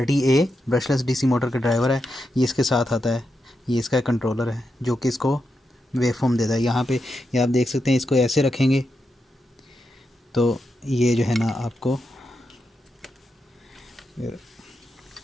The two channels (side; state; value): both; normal; correlation 0.86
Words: ब्रशलेस डीसी मोटर का ड्राइवर है। ये इसके साथ आता है। ये इसका कंट्रोलर है जो कि इसको वेवफॉर्म देता है। यहाँ पे ये आप देख सकते हैं, इसको ऐसे रखेंगे तो ये जो है ना आपको